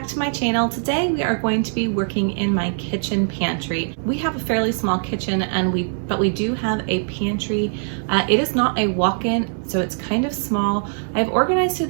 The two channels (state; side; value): silent; left; 64 dB below the other